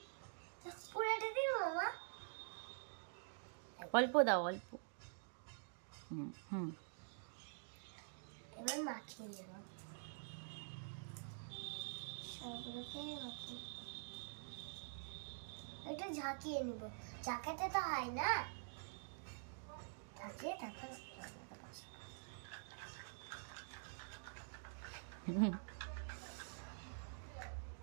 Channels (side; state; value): left; silent; digital silence